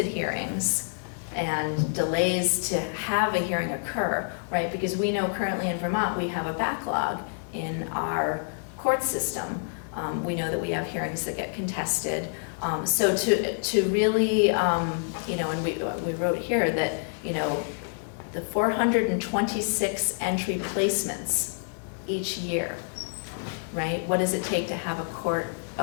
hearings and delays to have a hearing occur, right? Because we know currently in Vermont, we have a backlog in our court system. We know that we have hearings that get contested. So to really, you know, and we wrote here that, you know, the 426 entry placements each year, right? What does it take to have a court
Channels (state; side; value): silent; right; digital silence